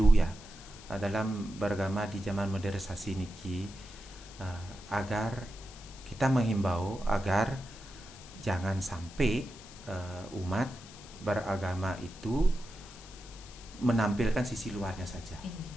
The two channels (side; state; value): left; noise; hiss, 18 dB below the sound